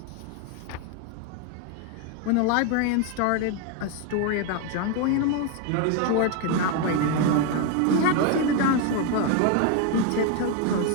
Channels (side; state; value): both; different; correlation 0.01